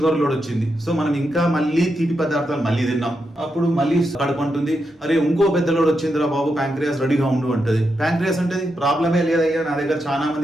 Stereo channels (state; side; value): normal; both; correlation 0.85